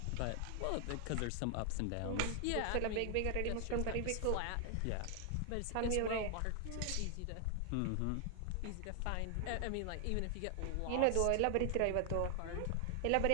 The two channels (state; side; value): different; both; correlation 0.00